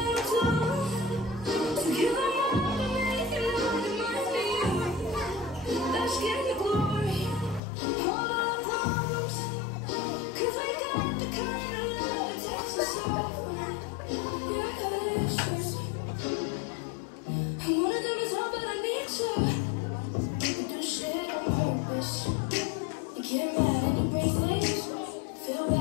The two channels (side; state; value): right; drops out; at 7.6 s